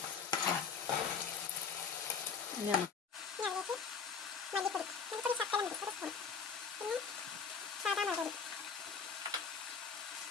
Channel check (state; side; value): quieter; right; 6.0 dB